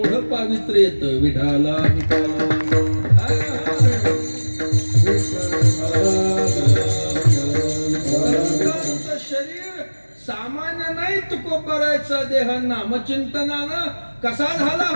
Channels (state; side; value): inverted; both; correlation -1.00